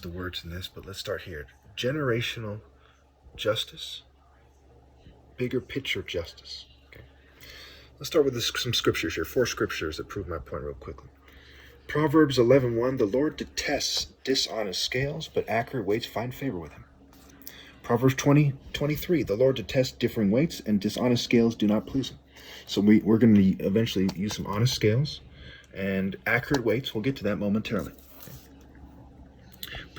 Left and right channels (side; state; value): both; identical; correlation 1.00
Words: the words in this, but let's start here. Generational justice, bigger picture justice. Okay. Let's start with some scriptures here. Four scriptures that prove my point real quickly. Proverbs 11:1, the Lord detests dishonest scales, but accurate weights find favor with him. Proverbs 20:23, the Lord detests differing weights, and dishonest scales do not please him. So we're going to eventually use some honest scales and accurate weights. We'll get to that momentarily.